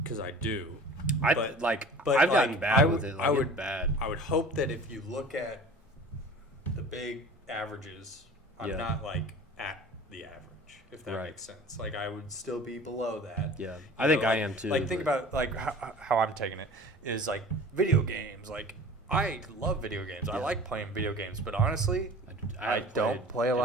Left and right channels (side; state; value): both; normal; correlation 0.42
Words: because I do. I've but gotten like, bad with it. Like, I would it's bad. I would hope that if you look at the big averages, I'm Yeah. not like at the average, if that Right. makes sense. Like I would still be below that. Yeah, You I think know, I like- am too. Like think but- about like how I'm taking it is like video games. Like I love video games. I Yeah. like playing video games, but honestly, I haven't don't played play a in